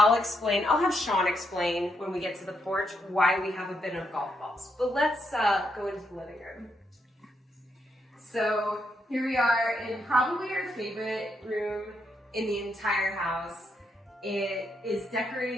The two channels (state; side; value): normal; both; correlation 0.79